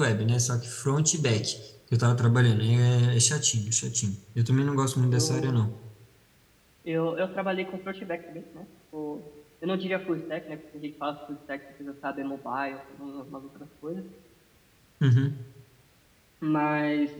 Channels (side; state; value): both; identical; correlation 1.00